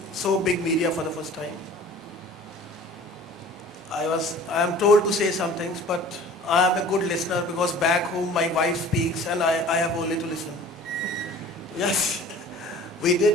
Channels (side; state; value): both; normal; correlation 0.46